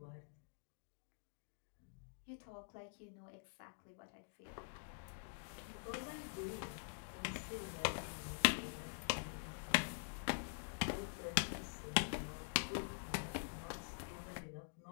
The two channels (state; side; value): silent; right; digital silence